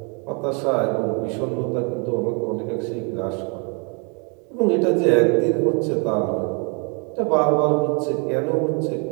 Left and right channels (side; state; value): left; quieter; 35.5 dB